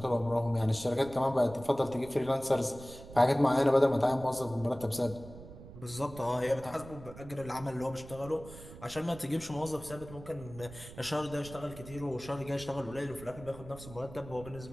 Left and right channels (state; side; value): noise; right; rumble, 16 dB below the sound